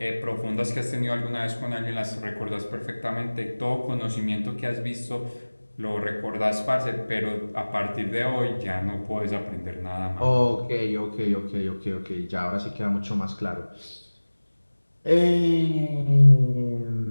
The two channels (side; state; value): both; inverted; correlation -1.00